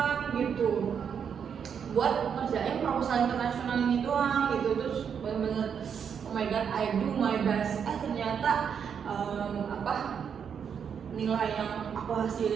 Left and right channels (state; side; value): quieter; left; 7.4 dB